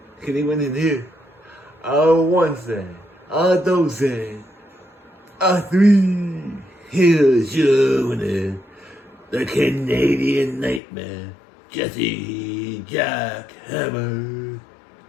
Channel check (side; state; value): right; drops out; at 10.8 s